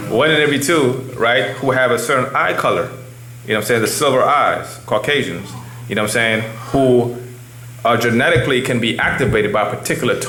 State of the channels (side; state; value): both; identical; correlation 1.00